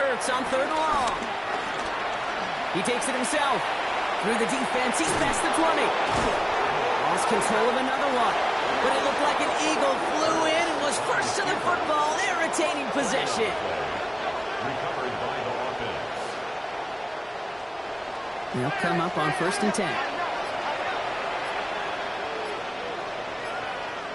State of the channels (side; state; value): both; identical; correlation 1.00